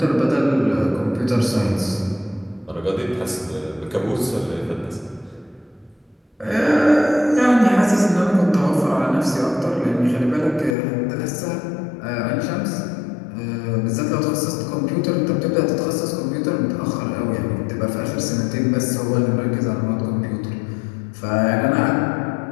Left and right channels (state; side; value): drops out; right; at 10.8 s